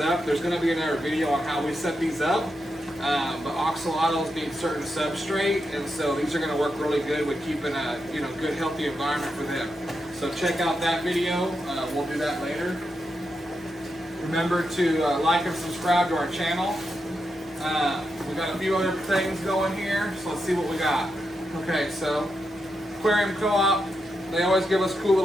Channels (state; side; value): normal; both; correlation 0.85